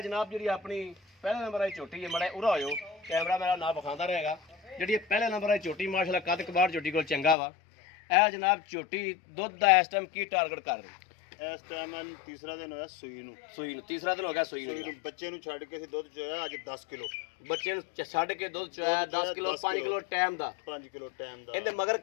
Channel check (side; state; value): right; drops out; at 7.4 s